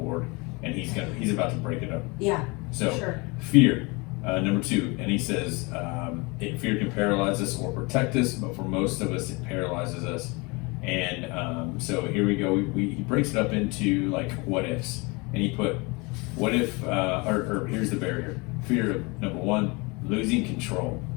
and he's about to break it up. Yeah. So sure. Fear. Number 2, and he says, fear can paralyze us or protect us, but for most of us, it paralyzes us. And so here we go. He breaks it up into what ifs, and he put, what if, or here's the barrier. Fear of, number 1, losing control.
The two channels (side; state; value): right; quieter; 27.3 dB